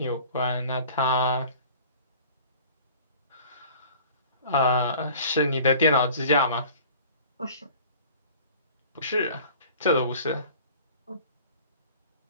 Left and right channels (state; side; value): inverted; both; correlation -0.45